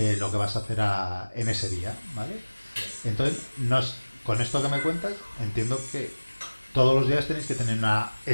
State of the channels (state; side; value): inverted; both; correlation -1.00